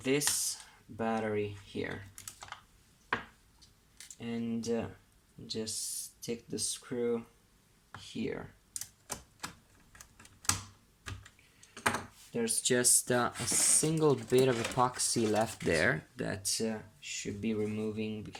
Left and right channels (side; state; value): both; identical; correlation 1.00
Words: battery here. And just stick the screw here. There's just a single bit of epoxy left there that should be removing